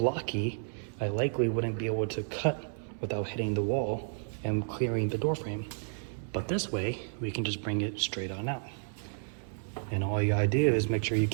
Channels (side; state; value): left; silent; 57 dB below the other